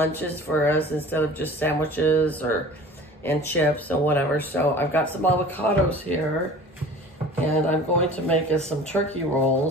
for us instead of just sandwiches and chips and whatever. So I've got some avocados here, and I'm going to make us some turkey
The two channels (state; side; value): normal; both; correlation 0.42